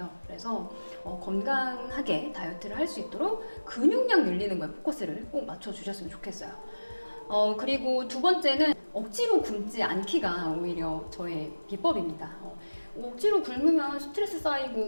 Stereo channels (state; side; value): inverted; both; correlation -1.00